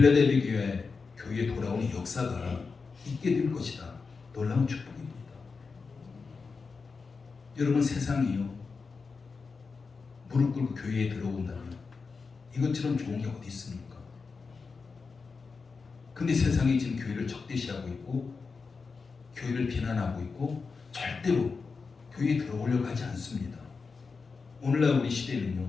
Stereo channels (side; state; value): right; quieter; 4.8 dB